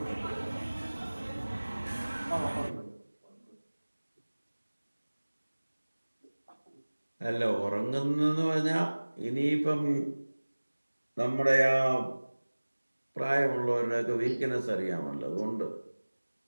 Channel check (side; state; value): both; inverted; correlation -1.00